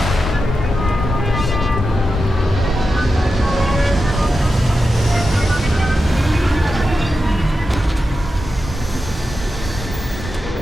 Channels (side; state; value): both; normal; correlation 0.90